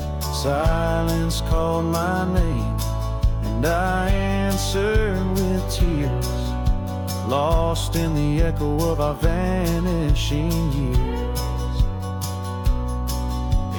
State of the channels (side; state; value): both; identical; correlation 1.00